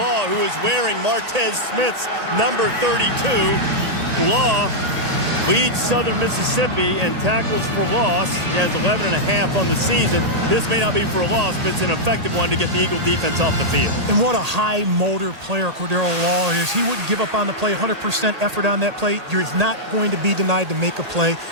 who is wearing Martez Smith's number 32. Law leads Southern Mississippi in tackles for loss. He has 11.5 on the season. This may not be for a loss, but it's an effective one to get the Eagle defense off the field. And what a high motor player Cordero Law is. He wouldn't give up on the play, 100% effort on that play. You're not going to be denied to make a play.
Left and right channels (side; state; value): left; late; 1.8 ms